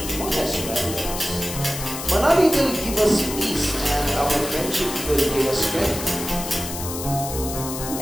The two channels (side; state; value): left; noise; hiss, 7 dB below the sound